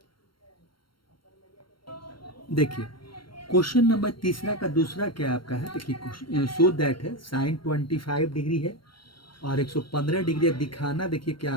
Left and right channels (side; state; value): right; late; 0.73 ms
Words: देखिए क्वेश्चन नंबर तीसरा का दूसरा क्या आपका है, देखिए सो दैट है साइन 25 डिग्री है और 115 डिग्री दिखाना, देखिए क्या